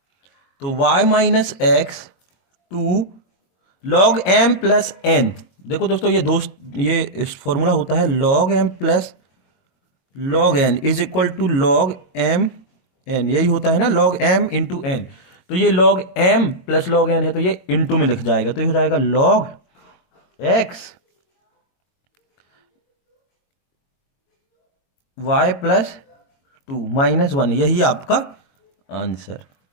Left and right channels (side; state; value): right; late; 22 ms